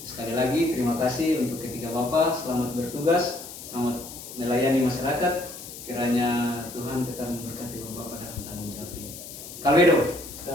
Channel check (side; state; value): left; noise; hiss, 13 dB below the sound